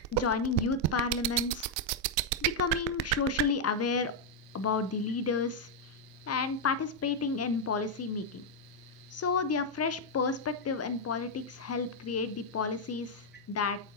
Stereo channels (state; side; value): normal; both; correlation -0.01